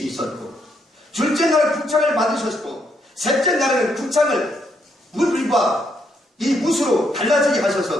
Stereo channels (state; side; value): normal; both; correlation 0.75